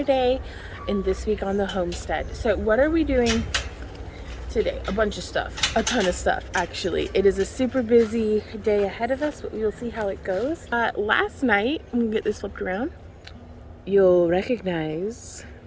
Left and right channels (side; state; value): both; identical; correlation 1.00